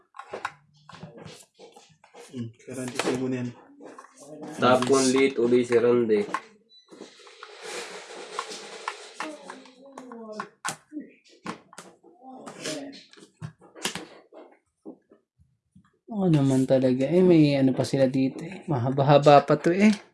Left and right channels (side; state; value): both; identical; correlation 1.00